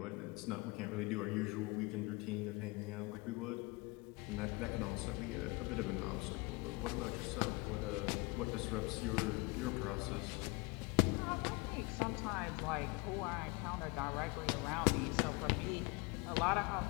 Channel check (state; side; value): quieter; right; 26.1 dB